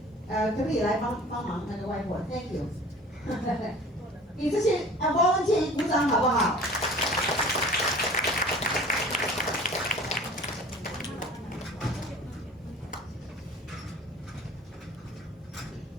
可不可以来帮忙那个 whiteboard? Thank you. 给这些volunteer 鼓掌好不好？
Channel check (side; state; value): both; normal; correlation 0.45